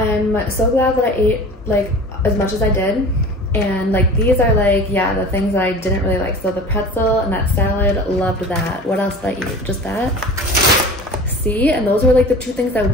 so glad that I ate like as much as I did. And like, these are like, yeah, the things that I didn't really like. So the pretzel and that salad, loved that. What else did I eat? Just that? See? And those were like the two things I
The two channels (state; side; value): normal; both; correlation 0.39